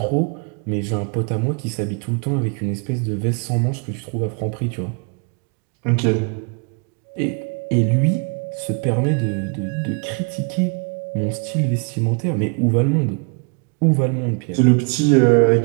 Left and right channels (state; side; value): quieter; left; 37.4 dB